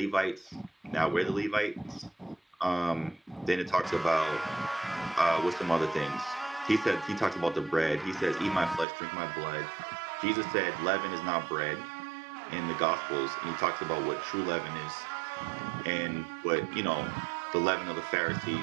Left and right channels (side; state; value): left; drops out; at 8.8 s